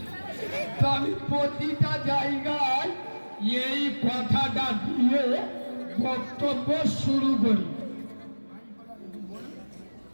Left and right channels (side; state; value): both; inverted; correlation -1.00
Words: তো আমি প্রতিটা জায়গায় এই কথাটা দিয়ে বক্তব্য শুরু করি।